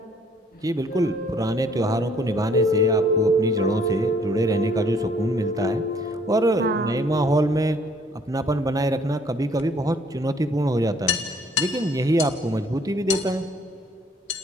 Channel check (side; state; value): both; normal; correlation 0.61